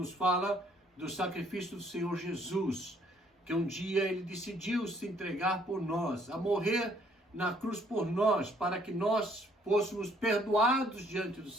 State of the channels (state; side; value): normal; both; correlation 0.64